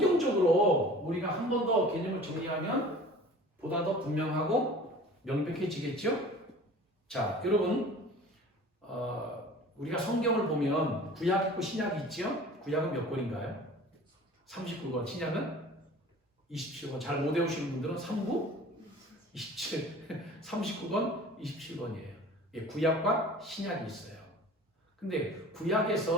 우리가 한 번 더 개념을 정리하면 보다 더 분명하고 명백해지겠죠? 자, 여러분, 우리가 성경을 보면 구약 있고 신약이 있죠? 구약은 몇 권인가요? 39권, 신약은 27권. 잘 못 외우시는 분들은 3구 27, 39권, 27권이에요. 구약과 신약이 있어요. 근데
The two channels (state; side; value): normal; both; correlation 0.44